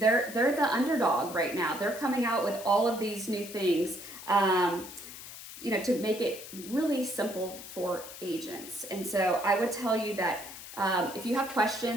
the underdog right now. They're coming out with all of these new things, to make it really simple for agents. And so I would tell you that if you have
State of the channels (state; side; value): noise; left; hiss, 13 dB below the sound